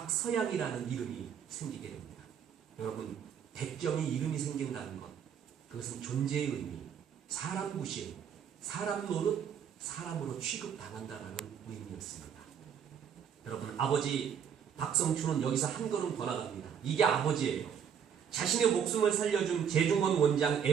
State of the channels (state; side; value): quieter; left; 7.9 dB